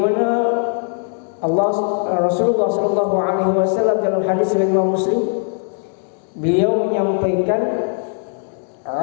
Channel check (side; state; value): right; silent; 58 dB below the other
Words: Rasulullah sallallahu alaihi wasallam dalam hadis riwayat Imam Muslim, beliau menyampaikan,